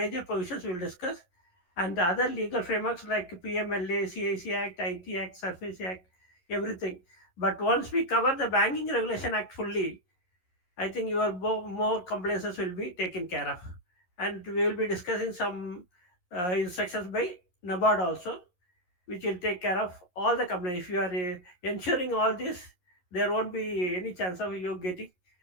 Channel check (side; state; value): right; late; 11 ms